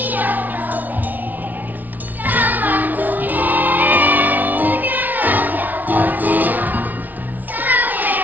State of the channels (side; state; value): left; late; 0.081 ms